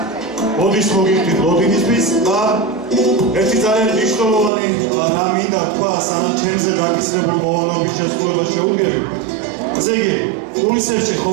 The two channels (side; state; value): left; drops out; at 4.5 s